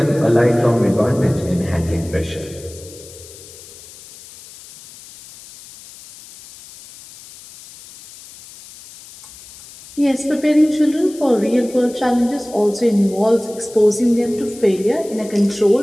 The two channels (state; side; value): noise; left; hiss, 19 dB below the sound